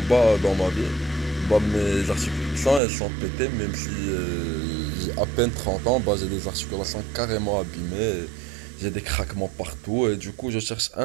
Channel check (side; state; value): left; drops out; at 2.8 s